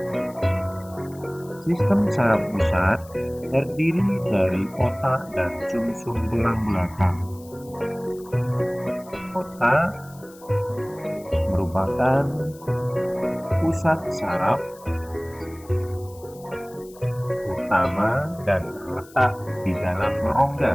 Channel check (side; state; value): left; noise; hiss, 23 dB below the sound